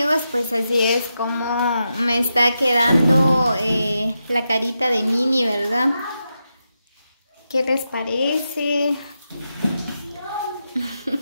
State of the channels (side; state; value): both; inverted; correlation -0.87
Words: pues así es como me está quedando la carita de Minnie, ¿verdad? ¿Qué les parece?